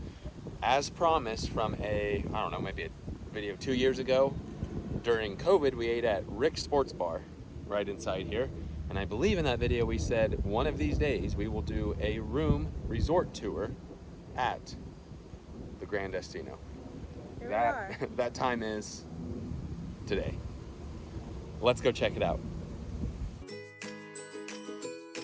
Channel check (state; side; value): identical; both; correlation 1.00